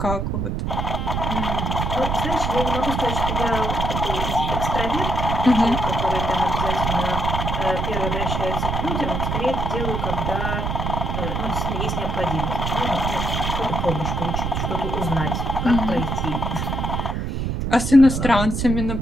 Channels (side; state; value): right; noise; rumble, 1 dB below the sound